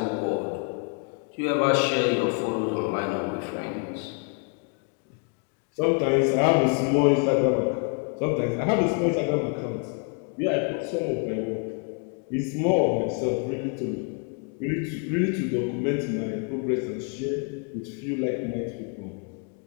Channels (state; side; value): quieter; right; 37.5 dB